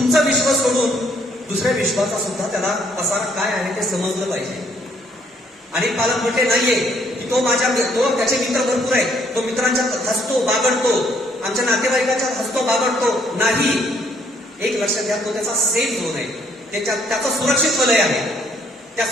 विश्वास सोडून दुसऱ्या विश्वाचा सुद्धा त्याला पसार काय आहे ते समजलं पाहिजे. आणि पालक म्हटले नाहीये की तो त्याचे मित्र भरपूर आहेत, तो मित्रांच्यात हसतो बागडतो, आमच्या नातेवाईकांच्यात हसतो बागडतो. नाही, एक लक्षात घ्या, तो त्याचा सेफ झोन आहे. त्याचं सुरक्षित वलय आहे. त्या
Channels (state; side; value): normal; both; correlation 0.67